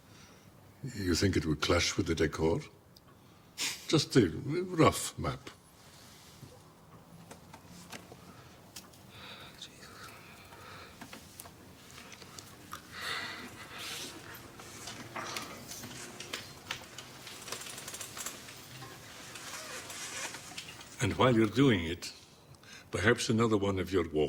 You think it would clash with the decor? Just a rough map. And while you're doing it, perhaps another one of your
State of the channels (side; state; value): both; identical; correlation 1.00